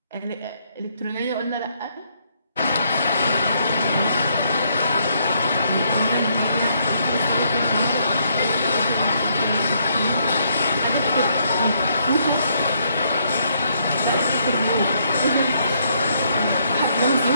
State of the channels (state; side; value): inverted; both; correlation -0.72